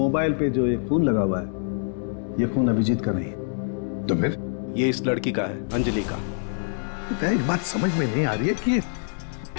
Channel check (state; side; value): silent; right; 62 dB below the other